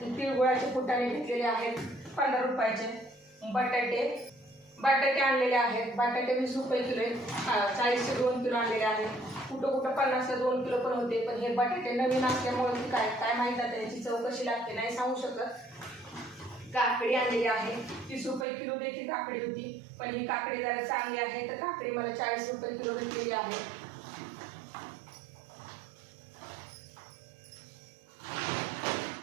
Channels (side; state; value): left; drops out; at 18.4 s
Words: तिळगुळाचे फुटाणे घेतलेले आहेत 15 रुपयाचे। बटाटे आणलेले आहेत। बटाटे 20 रुपये किलो आहेत। 40 चे 2 किलो आणलेले आहेत। कुठं 50 ला 2 किलो पण होते, पण हे बटाटे नवीन असल्यामुळे काय माहित आहे त्याची चव कशी लागते नाही सांगू शकत। काकडी आणलेली आहे 30 रुपये किलो देखील काकडी होती, पण ही काकडी जरा चांगली आहे, तर काकडी मला 40 रुपये किलो भेटलेली आहे।